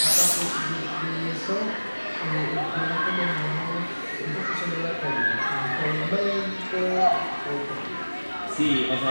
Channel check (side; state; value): both; inverted; correlation -1.00